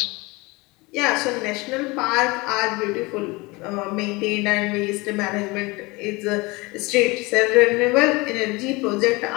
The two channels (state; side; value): quieter; right; 24.4 dB